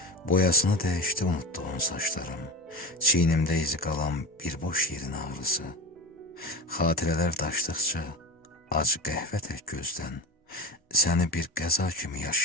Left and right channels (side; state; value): both; normal; correlation 0.27